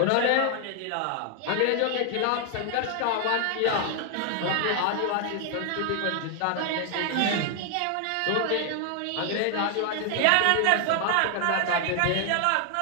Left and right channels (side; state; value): both; different; correlation 0.00